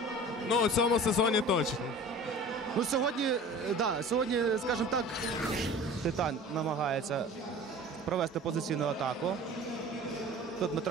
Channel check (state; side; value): normal; both; correlation 0.40